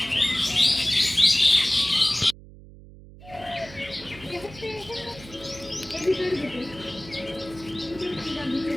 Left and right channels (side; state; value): right; noise; hum, 19 dB below the sound